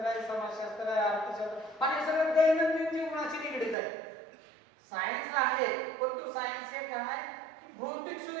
आहे, समाजशास्त्र आहे, अर्थशास्त्र आणि सगळं दैनंदिन जीवनाशी निगडीत आहे. सायन्स आहे पण तो सायन्स हे काय की भौतिक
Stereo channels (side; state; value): left; drops out; at 3.8 s